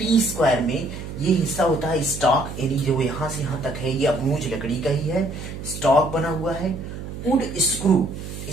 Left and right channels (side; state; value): right; noise; hum, 9 dB below the sound